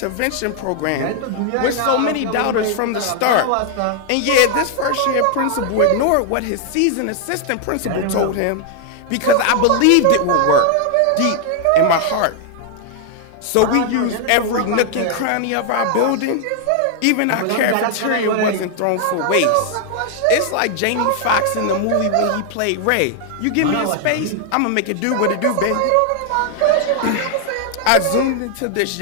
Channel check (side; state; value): both; different; correlation 0.00